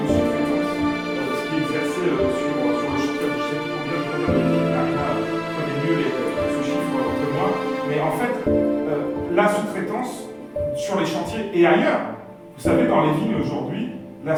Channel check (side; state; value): both; identical; correlation 1.00